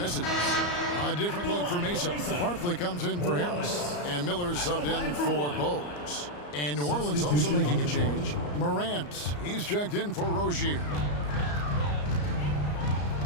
A different look for Mesa. Barkley comes in for Harris. And Miller's subbed in for Bowes. And New Orleans also making a change. Morant, he's checked in for Rozier.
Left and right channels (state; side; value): late; right; 34 ms